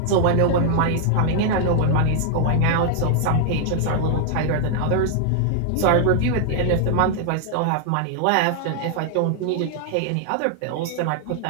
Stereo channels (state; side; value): different; both; correlation 0.00